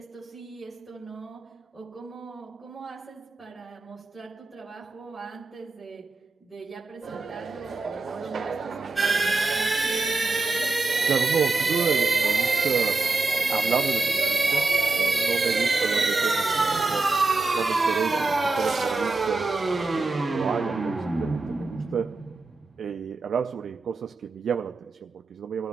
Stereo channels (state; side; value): quieter; left; 3.5 dB